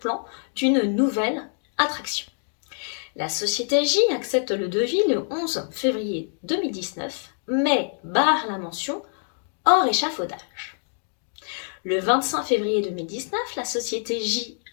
d'une nouvelle attraction. La société J accepte le devis le 11 février 2019, mais barre la mention hors échafaudage. Le 25 février 2019, la société J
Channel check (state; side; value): silent; right; 62 dB below the other